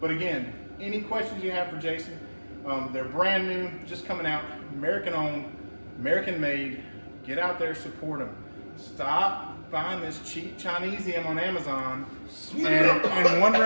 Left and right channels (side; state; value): both; inverted; correlation -1.00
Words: But again, any questions you have for Jason, they're brand new, just coming out, American owned. American made. Get out there, support them. Stop buying this cheap Chinesium on Amazon and